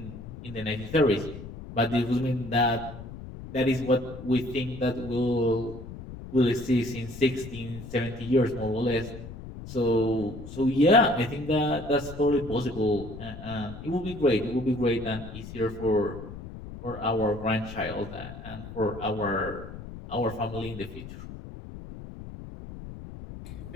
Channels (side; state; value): left; noise; rumble, 12 dB below the sound